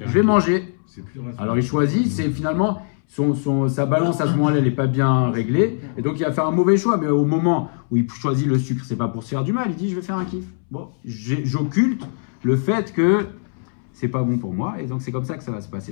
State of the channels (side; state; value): right; silent; 65 dB below the other